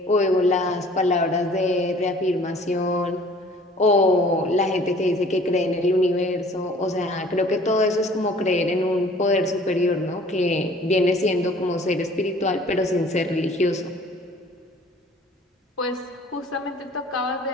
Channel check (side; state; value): both; normal; correlation 0.52